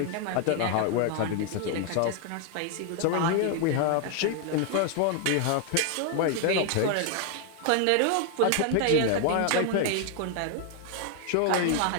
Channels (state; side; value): different; both; correlation 0.00